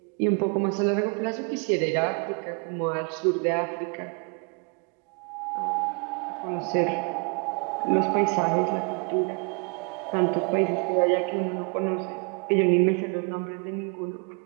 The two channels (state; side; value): quieter; left; 36.5 dB